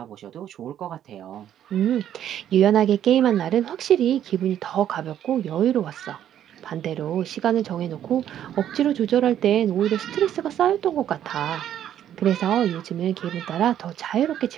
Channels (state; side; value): quieter; left; 10.6 dB